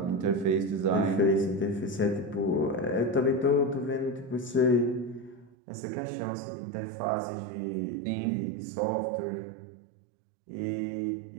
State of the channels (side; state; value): left; drops out; at 5.6 s